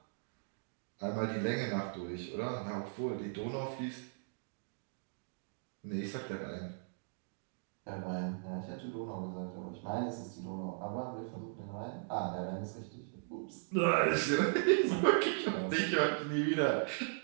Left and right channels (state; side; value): silent; left; digital silence